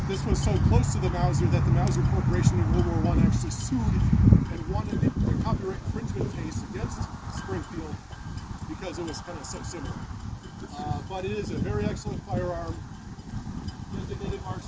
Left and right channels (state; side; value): identical; both; correlation 1.00